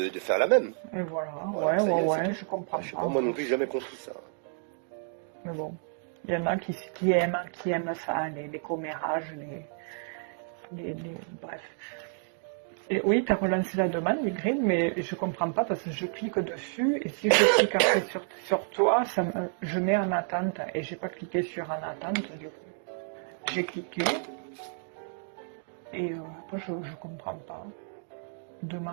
faire la même. Et voilà, Voilà, c'est bien ça. je comprends Je sais pas. pas, moi non plus, j'ai jamais compris ça. Mais bon, il y en a qui aiment ça, les commérages, bref. Et oui, tu as relancé la demande, Y, mais je comprends pas parce que je clique dessus et si je clique après sur toi, je mets en attente et j'ai pas cliqué sur en attente du coup. J'ai cliqué et après je comprends pas.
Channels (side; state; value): left; silent; 58 dB below the other